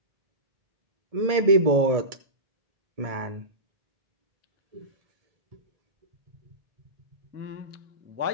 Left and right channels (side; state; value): left; late; 1.7 ms